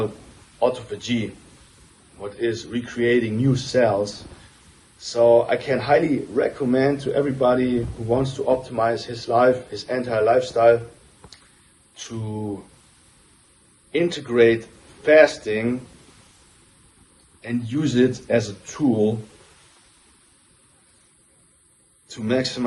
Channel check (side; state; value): both; identical; correlation 1.00